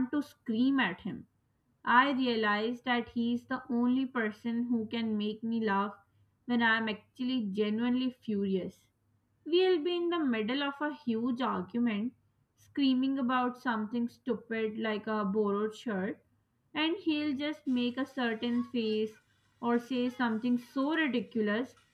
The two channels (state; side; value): identical; both; correlation 1.00